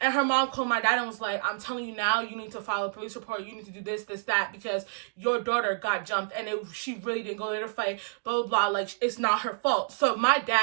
And her mom called my dad and was like, I'm telling you now, you need to file a police report. You need to do this, that, because your daughter got jumped and she really didn't go there to fight, blah, blah, blah. Like, it's not her fault. So my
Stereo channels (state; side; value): silent; left; digital silence